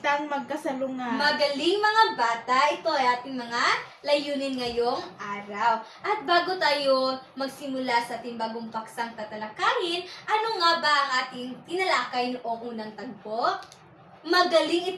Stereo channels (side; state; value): both; identical; correlation 1.00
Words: magkasalungat. Magaling mga bata, ito ay ating mga layunin ngayong araw. At bago tayo magsimula sa ating bagong paksang tatalakayin, ano nga ba ang ating tinalakay noong unang tagpo? Magaling,